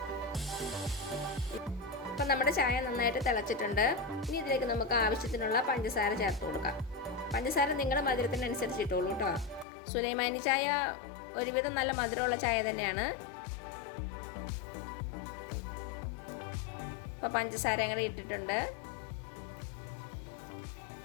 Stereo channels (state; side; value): drops out; right; at 9.7 s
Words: അപ്പം നമ്മുടെ ചായ നന്നായിട്ട് തിളച്ചിട്ടുണ്ട്. ഇനി ഇതിലേക്ക് നമുക്ക് ആവശ്യത്തിനുള്ള പഞ്ചസാര ചേർത്ത് കൊടുക്കാം. പഞ്ചസാര നിങ്ങളുടെ മധുരത്തിനനുസരിച്ച് ഇട്ടോളൂ കേട്ടോ. സുലൈമാനി ചായ ഒരുവിധം നല്ല മധുരമുള്ള ചായ തന്നെയാണ്. അപ്പം പഞ്ചസാര അങ്ങനെ ഇട്ടിട്ടുണ്ട്.